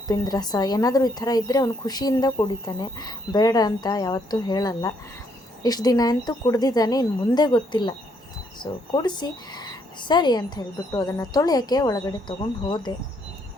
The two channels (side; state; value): both; normal; correlation 0.71